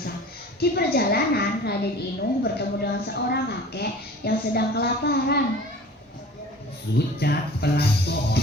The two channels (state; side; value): normal; both; correlation 0.43